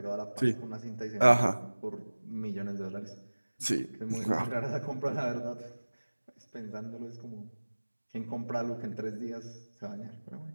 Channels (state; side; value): inverted; both; correlation -1.00